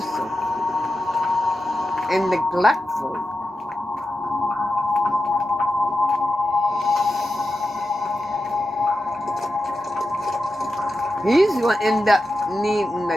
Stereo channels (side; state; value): both; normal; correlation 0.90